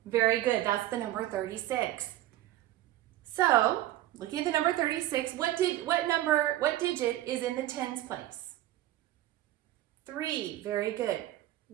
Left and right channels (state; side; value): quieter; left; 14.6 dB